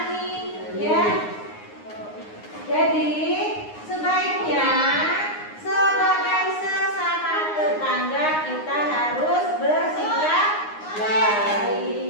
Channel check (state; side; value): late; right; 9.6 ms